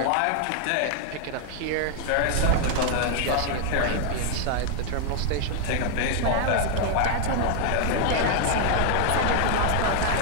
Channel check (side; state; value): both; different; correlation 0.00